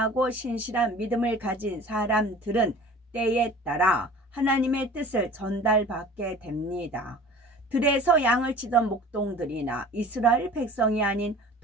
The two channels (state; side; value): normal; both; correlation 0.43